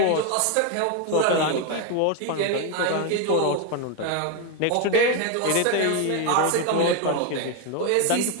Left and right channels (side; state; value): both; different; correlation 0.01